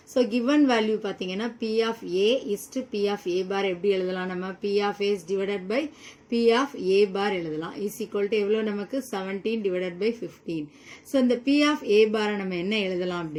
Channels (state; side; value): identical; both; correlation 1.00